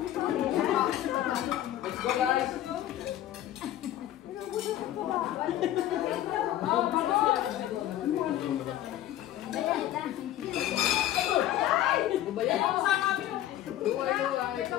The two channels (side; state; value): right; quieter; 12.8 dB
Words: Let's go, guys.